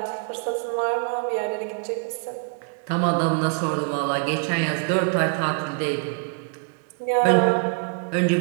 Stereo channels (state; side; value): quieter; left; 39.0 dB